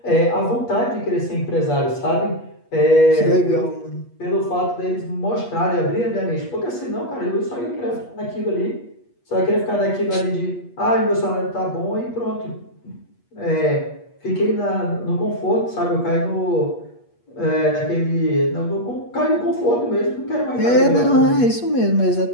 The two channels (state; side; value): late; right; 8.4 ms